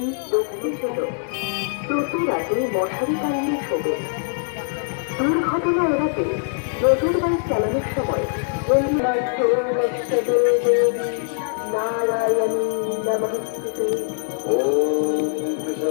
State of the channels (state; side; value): silent; right; digital silence